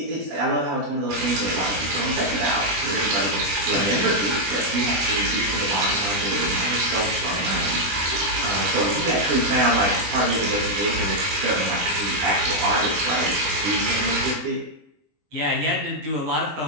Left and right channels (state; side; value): late; left; 20 ms